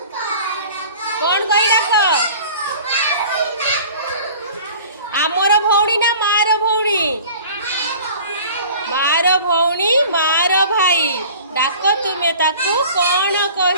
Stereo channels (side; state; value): both; inverted; correlation -0.44